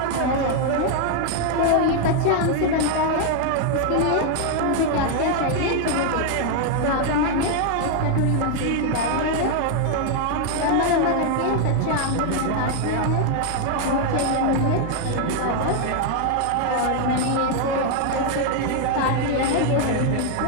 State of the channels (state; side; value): different; both; correlation 0.00